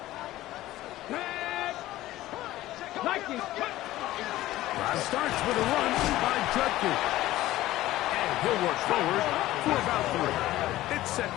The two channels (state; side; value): quieter; right; 15.8 dB